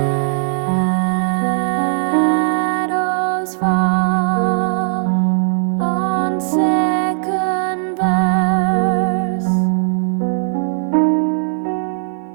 fall on second verse,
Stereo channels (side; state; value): left; silent; digital silence